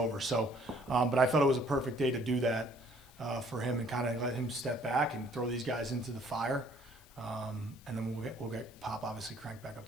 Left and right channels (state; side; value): noise; left; hiss, 25 dB below the sound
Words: So, but I thought it was a perfect day to do that for him and kind of let him step back and throw these guys into the fire. And then we'll get Pop obviously cranked back up